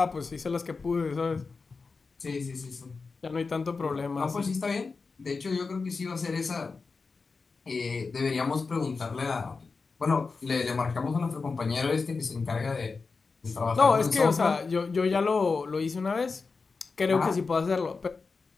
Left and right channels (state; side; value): quieter; right; 4.5 dB